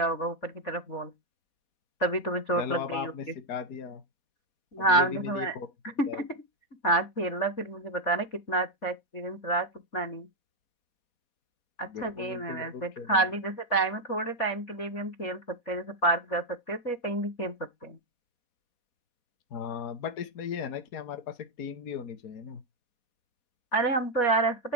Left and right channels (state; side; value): late; right; 4.2 ms